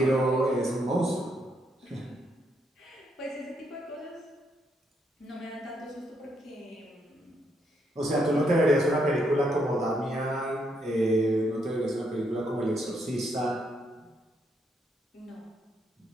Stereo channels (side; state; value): both; normal; correlation 0.75